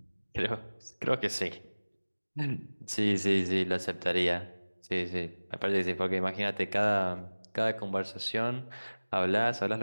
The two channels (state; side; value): inverted; both; correlation -1.00